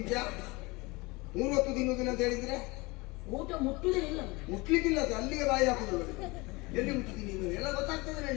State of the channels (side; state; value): right; quieter; 24.3 dB